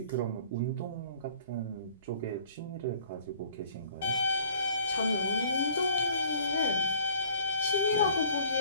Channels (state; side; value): inverted; both; correlation -0.54